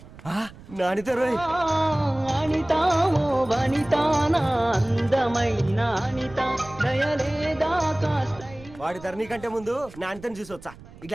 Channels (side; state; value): right; noise; rumble, 19 dB below the sound